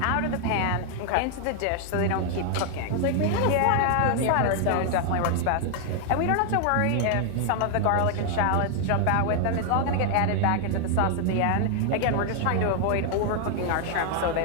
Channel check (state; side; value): different; both; correlation 0.00